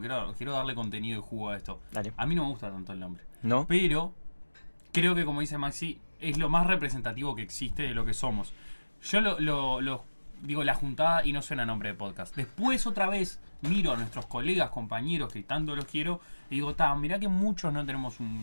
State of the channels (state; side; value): inverted; both; correlation -1.00